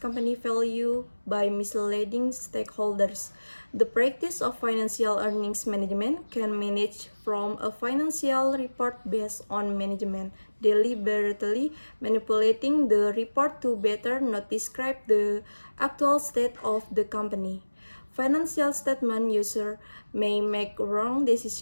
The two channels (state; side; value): inverted; both; correlation -1.00